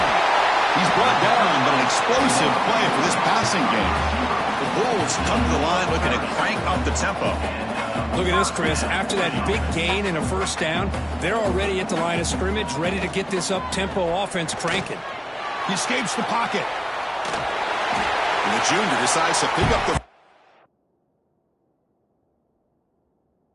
He's brought down, but an explosive play for this passing game. The Bulls come to the line looking to crank up the tempo. Look at this, Chris. After that big gain and a first down, they're already at the line of scrimmage, ready to get this up-tempo offense cranking. He escapes the pocket. And the junior decides to pick up the...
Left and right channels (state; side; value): identical; both; correlation 1.00